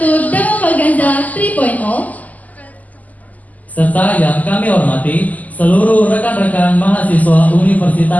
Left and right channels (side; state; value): right; late; 0.078 ms